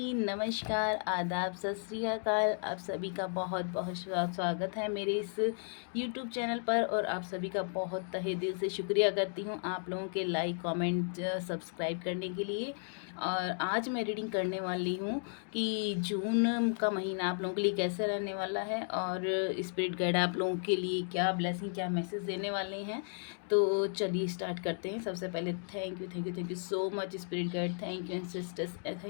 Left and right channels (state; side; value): silent; right; 55 dB below the other